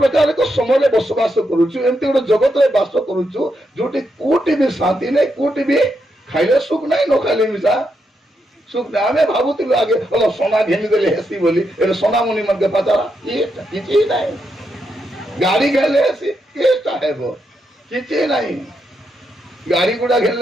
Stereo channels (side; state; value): both; normal; correlation 0.82